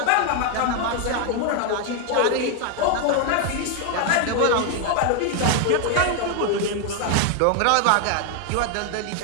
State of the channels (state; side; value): different; both; correlation 0.01